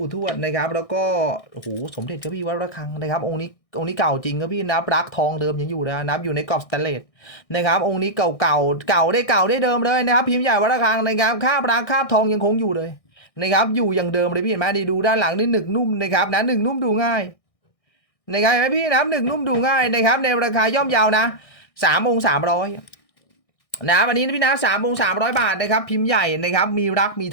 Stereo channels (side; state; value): right; late; 1.6 ms